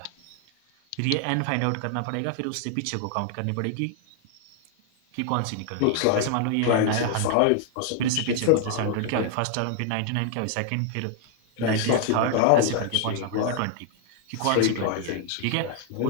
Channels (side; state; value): both; different; correlation 0.00